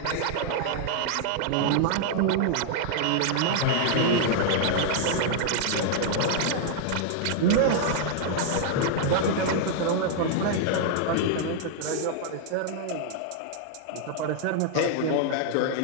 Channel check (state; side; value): different; both; correlation -0.01